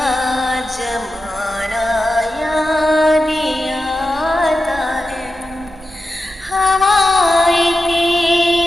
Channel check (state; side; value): normal; both; correlation 0.91